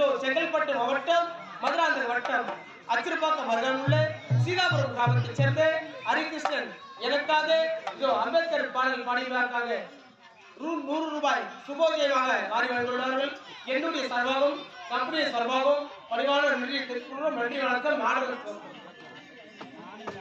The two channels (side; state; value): both; identical; correlation 1.00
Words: செங்கல்பட்டு மாவட்டம் மதுராந்தகம் வட்டம் அச்சிறுபாக்கம் அருகில் உள்ள சீதாபுரம் கிராமத்தைச் சேர்ந்த ஹரிகிருஷ்ணன் எனக்காக இதோ அம்பேத்கர் பாடல் பாடியதற்காக 100 ரூபாய் சுபோஜயமாக மாறி வந்துள்ளார்கள். என்னுடைய சார்பாகவும் கம்பெனி சார்பாகவும் பணிவான நன்றி தெரிவித்துள்ளோம். நன்றி வணக்கம். மாணவர்கள்